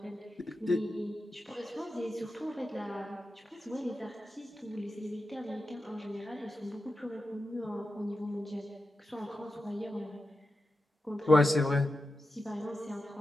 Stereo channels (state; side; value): normal; both; correlation 0.90